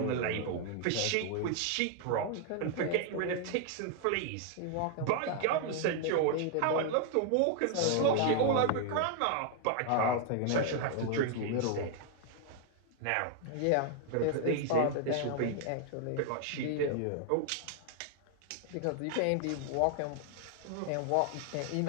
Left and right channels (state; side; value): different; both; correlation 0.00